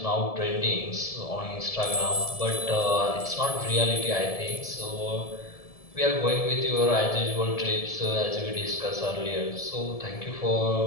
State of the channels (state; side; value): late; right; 1.7 ms